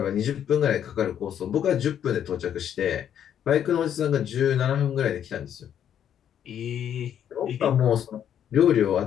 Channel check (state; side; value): quieter; right; 9.5 dB